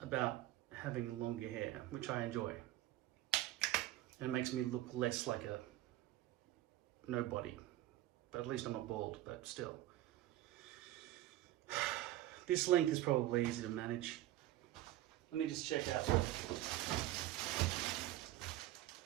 having longer hair, which I enjoy. And it makes me look less like a nobody. But at least I'm not bald, but still. This length is probably easy to manage. Let me just check out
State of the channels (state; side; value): quieter; left; 14.9 dB